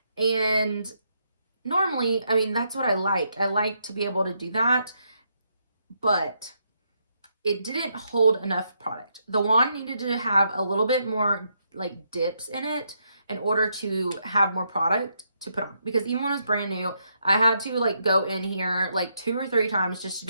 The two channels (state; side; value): inverted; both; correlation -0.78